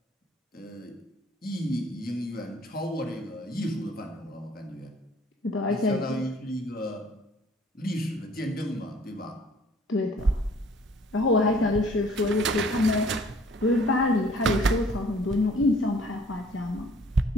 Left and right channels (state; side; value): normal; both; correlation 0.56